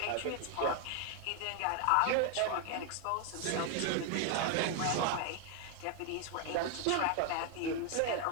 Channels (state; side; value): different; both; correlation 0.01